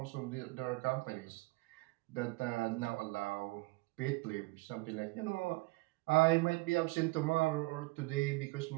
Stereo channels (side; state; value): left; quieter; 23.2 dB